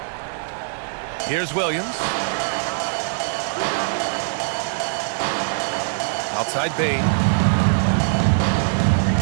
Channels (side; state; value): left; silent; digital silence